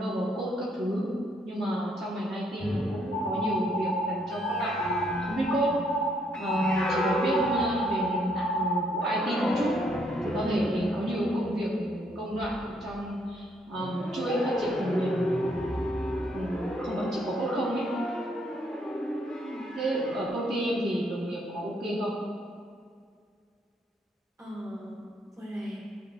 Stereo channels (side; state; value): both; normal; correlation 0.70